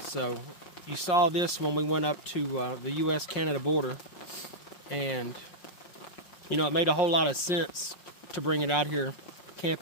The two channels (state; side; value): late; right; 5.5 ms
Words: So you saw this when we went up to the US-Canada border, and you know, it made a whole lot of sense to bring it out here